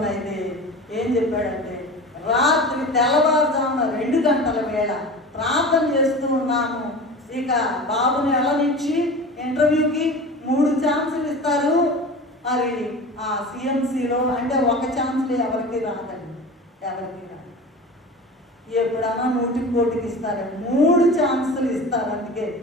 ఏం చెప్పాడంటే, రాత్రి తెల్లవారుజామున 2 గంటల వేళ ప్రార్థన చేస్తూ ఉన్నాము. ఇక బాబుని నుంచి ఇంటర్వ్యూకి 3 ఛాన్సులు ఇస్తారు. మరి ఆ CMCలో అంటే ఒక ఛాన్సులు ఎవరికి రాదండి, ఎవరికి రాదు. ఎప్పుడన్నా 100కి 1కి ఇస్తారు, 3 ఛాన్సులు ఇస్తారు. అందుకే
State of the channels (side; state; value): both; normal; correlation 0.34